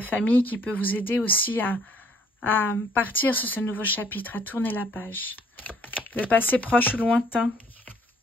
famille qui peut vous aider aussi à partir sur ce nouveau chapitre, à tourner la page. Le passé proche ou lointain.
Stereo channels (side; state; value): both; normal; correlation 0.61